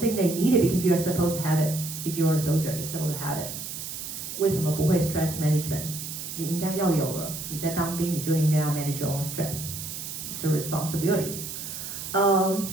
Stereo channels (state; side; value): noise; right; hiss, 8 dB below the sound